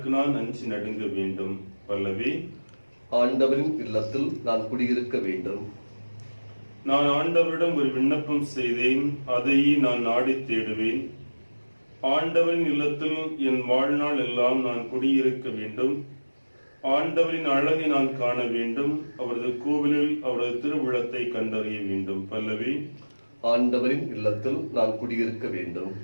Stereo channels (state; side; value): inverted; both; correlation -1.00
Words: நான் அஞ்சி நடுங்க வேண்டும். பல்லவி. ஆண்டவரின் இல்லத்தில் நான் குடியிருக்க வேண்டும். நான் ஆண்டவரிடம் ஒரு விண்ணப்பம் செய்தேன், அதையே நான் நாடி தேடுவேன். ஆண்டவரின் இல்லத்தில் என் வாழ்நாள் எல்லாம் நான் குடியிருக்க வேண்டும். ஆண்டவரின் அழகை நான் காண வேண்டும். அவரது கோவிலில் அவரது திருவுளத்தை கண்டறிய வேண்டும். பல்லவி. ஆண்டவரின் இல்லத்தில் நான் குடியிருக்க வேண்டும்.